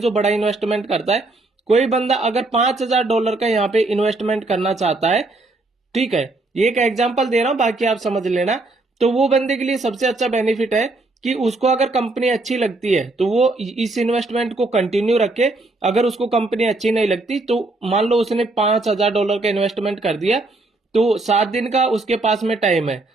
बड़ा इन्वेस्टमेंट करता है। कोई बंदा अगर $5000 का यहाँ पे इन्वेस्टमेंट करना चाहता है, ठीक है, ये एक एग्जांपल दे रहा हूं, बाकी आप समझ लेना। तो वो बंदे के लिए सबसे अच्छा बेनिफिट है कि उसको अगर कंपनी अच्छी लगती है तो वो इस इन्वेस्टमेंट को कंटिन्यू रखे। अगर उसको कंपनी अच्छी नहीं लगती तो मान लो उसने $5000 का इन्वेस्टमेंट कर दिया, तो 7 दिन का उसके पास में टाइम है,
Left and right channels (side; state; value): left; quieter; 3.0 dB